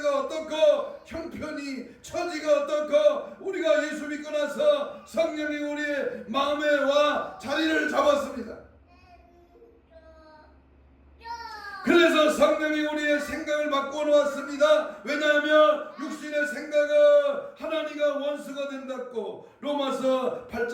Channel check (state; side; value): identical; both; correlation 1.00